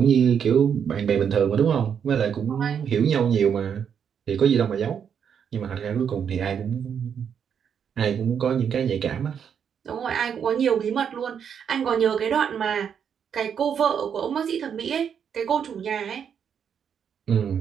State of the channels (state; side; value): quieter; left; 7.7 dB